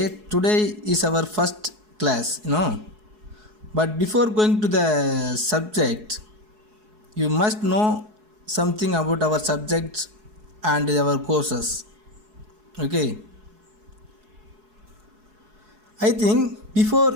today is our first class, But before going to the subject, you must know something about our subjects and our courses. Okay. I think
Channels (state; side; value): late; left; 4.7 ms